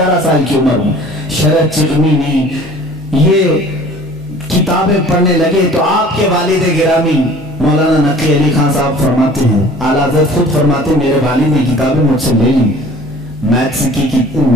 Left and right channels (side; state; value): both; normal; correlation 0.48